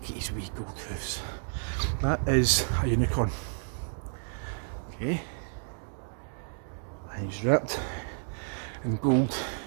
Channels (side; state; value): left; silent; digital silence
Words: at his wee gold hoofs. That is a unicorn. Okay. And he's wrapped in gold.